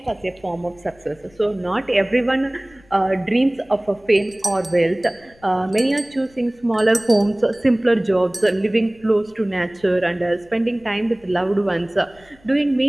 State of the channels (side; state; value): left; noise; rumble, 29 dB below the sound